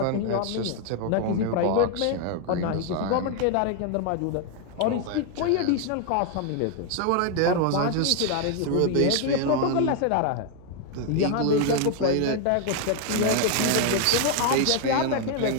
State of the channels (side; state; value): both; different; correlation 0.00